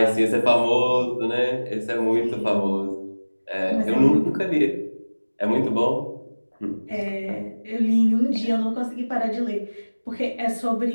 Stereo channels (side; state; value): both; inverted; correlation -1.00